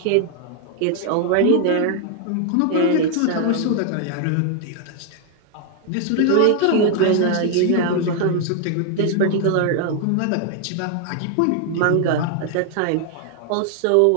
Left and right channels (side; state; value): both; different; correlation 0.00